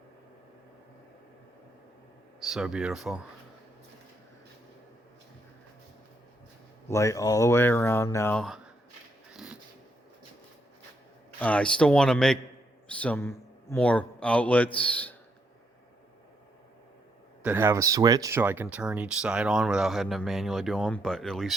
So beautiful. Light all the way around now. I still want to make some more outlets that have a switch so I can turn each side on without having to manually do them, but at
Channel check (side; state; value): both; normal; correlation 0.76